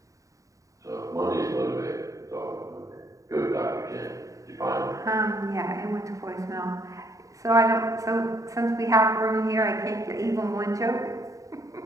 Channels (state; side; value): late; left; 0.16 ms